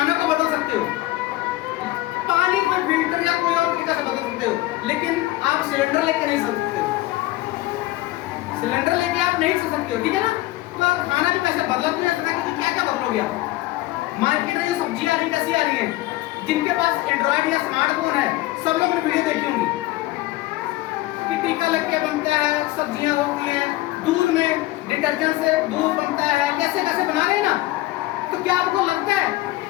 को बदल सकते हो, पानी को फिल्टर या कोई और तरीका से बदल सकते हो, लेकिन आप सिलेंडर लेके नहीं चल सकते हो। सिलेंडर लेके आप नहीं चल सकते हो, ठीक है ना? तो आप खाना भी वैसे बदला तो नहीं सकता, क्योंकि क्या बदलोगे आप? मार्केट में जो सब्जियां आ रही कैसी आ रही है? जिनके पास एंड्रॉइड या स्मार्टफोन है, सब लोग ने वीडियो देखी होंगी कि टीका लग के बनता है, सब्जियां होती हैं, दूध में डिटर्जेंट से दूध बनता है, कैसे कैसे बना रहे हैं ना। तो क्या आपको लगता है,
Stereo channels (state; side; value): quieter; right; 17.9 dB